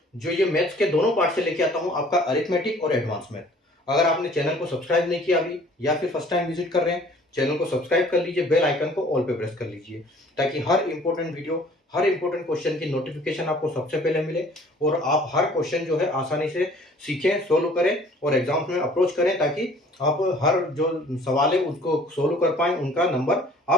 जो ये मैथ्स के दोनों पार्ट से लेके आता हूँ, आपका अरिथमेटिक और एडवांस मैथ। अगर आपने चैनल को सब्सक्राइब नहीं किया अभी या फिर फर्स्ट टाइम विजिट कर रहे हैं, चैनल को सब्सक्राइब कर लीजिए, बेल आइकन को ऑल पे प्रेस कर लीजिए, ताकि हर इंपॉर्टेंट वीडियो, हर इंपॉर्टेंट क्वेश्चन की नोटिफिकेशन आपको सबसे पहले मिले और आप हर क्वेश्चन जो है आसानी से सीखें, सोल्व करें और एग्जाम्स में अप्रोच करें, ताकि आप हर जो सवाल है उसको सोल्व कर पाएं, उनका नंबर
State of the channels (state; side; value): normal; both; correlation 0.53